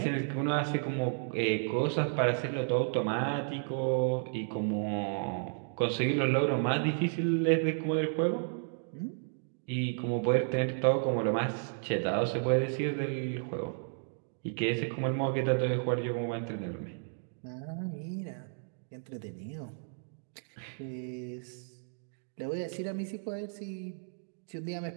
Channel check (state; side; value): silent; left; digital silence